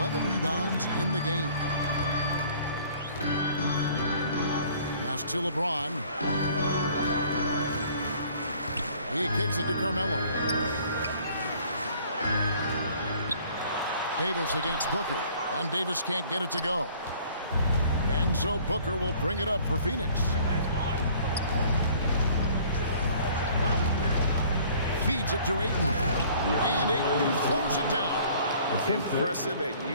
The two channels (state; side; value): inverted; both; correlation -0.55